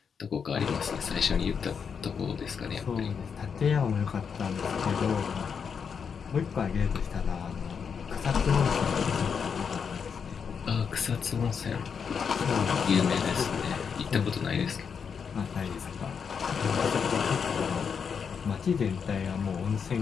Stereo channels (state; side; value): quieter; right; 6.5 dB